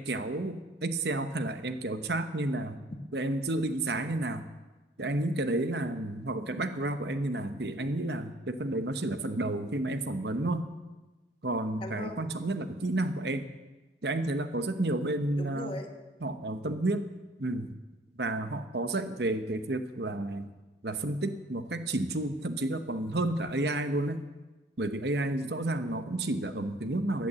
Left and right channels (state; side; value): normal; both; correlation 0.56